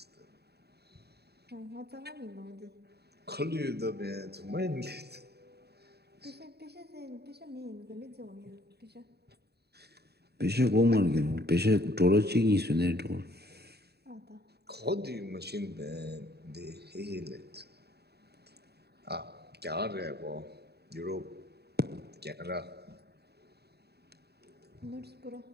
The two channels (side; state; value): left; late; 0.47 ms